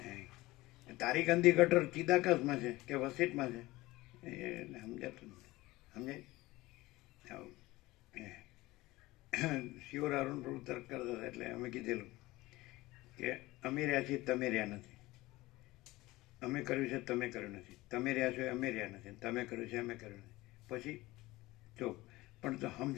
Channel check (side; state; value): right; quieter; 19.5 dB